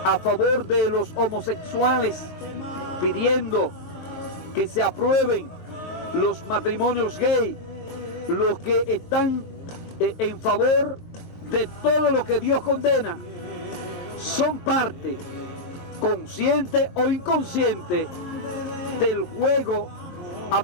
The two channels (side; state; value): right; late; 23 ms